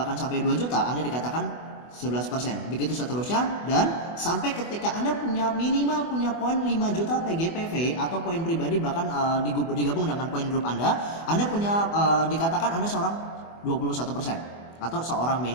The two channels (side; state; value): right; late; 24 ms